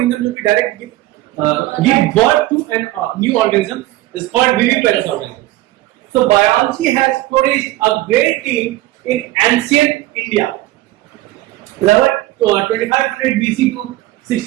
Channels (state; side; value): quieter; left; 16.8 dB